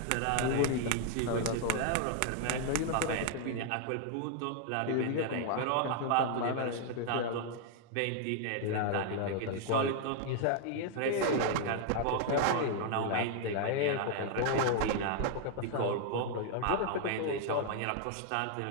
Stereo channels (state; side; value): different; both; correlation 0.00